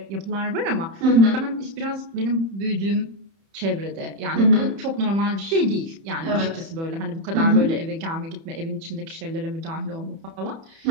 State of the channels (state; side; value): late; left; 30 ms